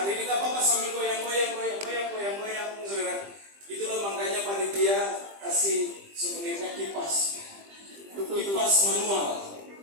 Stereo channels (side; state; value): left; late; 20 ms